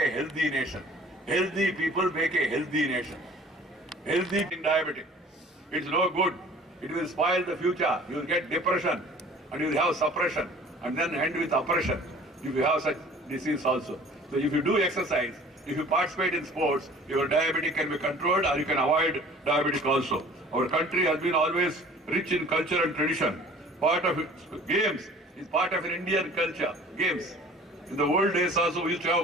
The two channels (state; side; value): normal; both; correlation 0.48